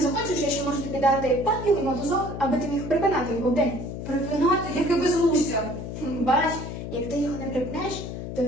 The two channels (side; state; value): left; noise; hum, 7 dB below the sound